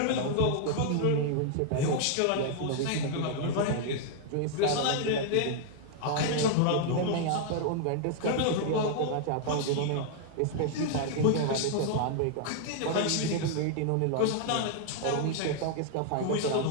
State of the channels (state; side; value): different; both; correlation -0.01